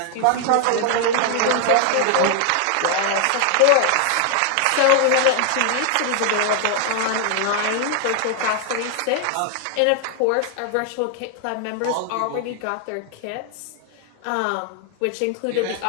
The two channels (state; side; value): different; both; correlation 0.00